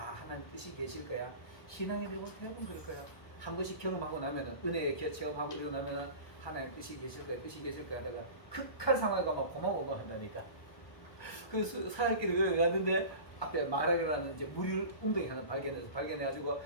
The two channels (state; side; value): late; right; 1.2 ms